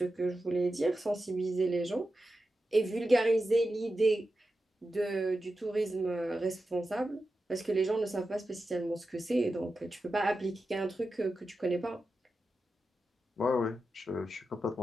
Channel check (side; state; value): both; normal; correlation 0.91